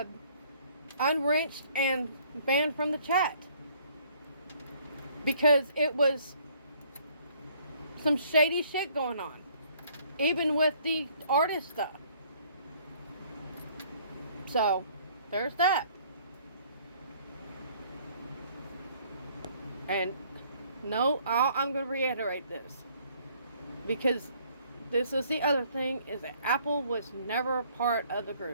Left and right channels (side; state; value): both; inverted; correlation -0.61